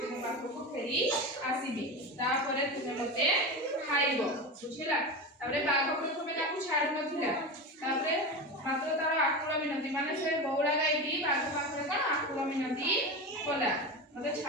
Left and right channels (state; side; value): normal; both; correlation 0.23